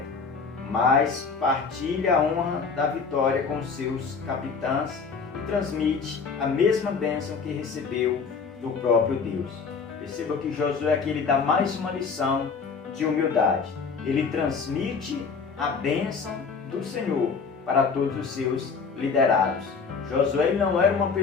mas partilha a honra da vitória com seus capitães e transmite a mesma bênção que recebeu do próprio Deus. Perceba que Josué aqui ele dá mais uma lição de humildade. Ele transmite a bênção do Senhor para todos os seus liderados. Josué não era uma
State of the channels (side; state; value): right; quieter; 5.3 dB